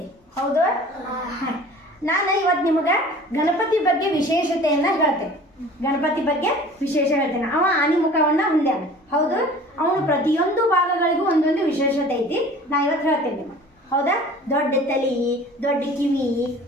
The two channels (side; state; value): both; normal; correlation 0.45